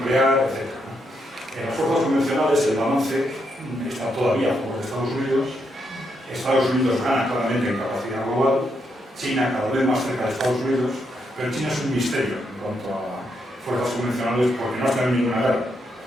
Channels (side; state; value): both; normal; correlation 0.79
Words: etc. En las fuerzas convencionales el balance está todavía a favor de Estados Unidos. Estados Unidos gana claramente en capacidad global. China cada vez más cerca de Estados Unidos, pero China es un misterio en cuanto a fuerzas convencionales porque no ha tenido ninguna guerra.